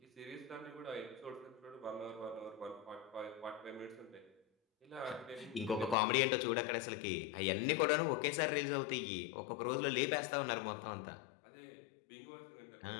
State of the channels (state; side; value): drops out; right; at 6.0 s